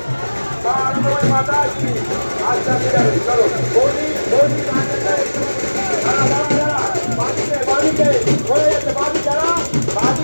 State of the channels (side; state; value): both; inverted; correlation -1.00